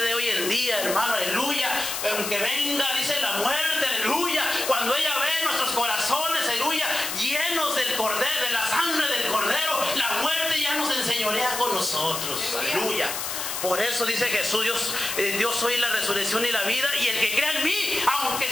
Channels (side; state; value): left; noise; hiss, 4 dB below the sound